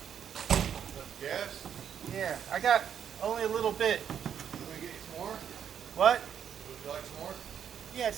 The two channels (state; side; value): quieter; left; 8.5 dB